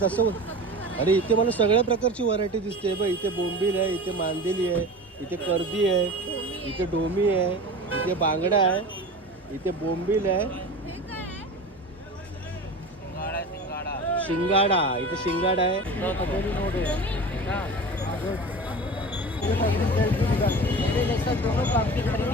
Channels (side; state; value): both; normal; correlation 0.33